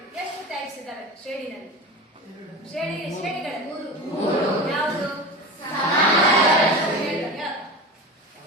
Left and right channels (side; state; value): both; normal; correlation 0.28